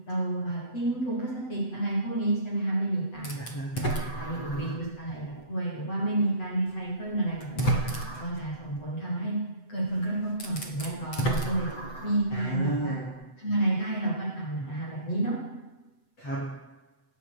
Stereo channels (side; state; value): right; late; 7.9 ms